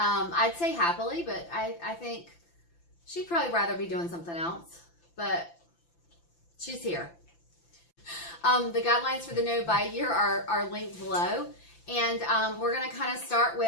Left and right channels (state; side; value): late; right; 5.9 ms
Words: say happily, but I think she'd probably rather be doing something else, but she's here. The guidelines for the no-buy year are linked below, and we're going to kind of start